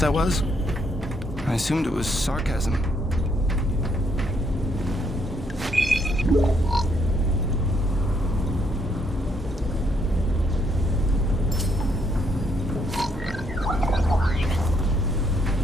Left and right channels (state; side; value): normal; both; correlation 0.72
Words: was? I assumed it was sarcasm.